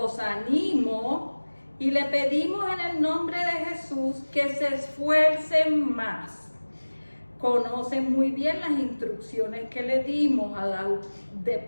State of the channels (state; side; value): inverted; both; correlation -1.00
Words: animo y le pedimos en el nombre de Jesús que se esfuercen más. Conocen muy bien las instrucciones que le dimos